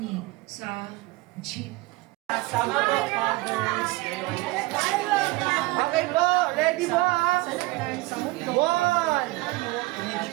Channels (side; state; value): left; quieter; 21.2 dB